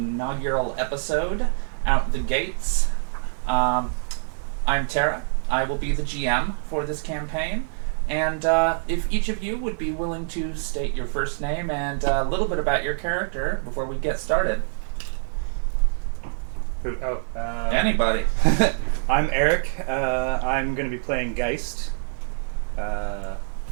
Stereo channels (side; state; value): left; silent; digital silence